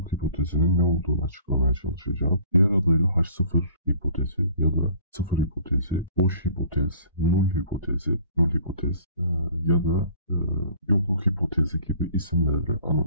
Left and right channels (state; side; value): inverted; both; correlation -0.51